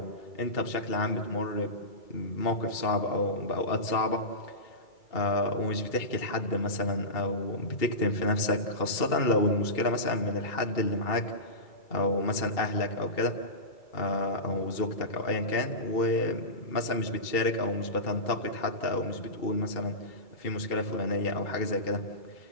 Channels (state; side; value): late; right; 2.7 ms